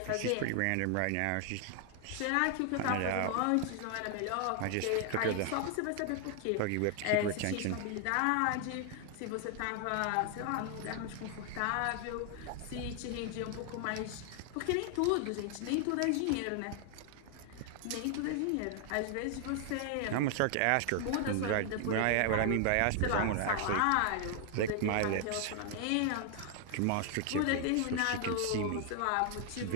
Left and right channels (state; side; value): different; both; correlation 0.00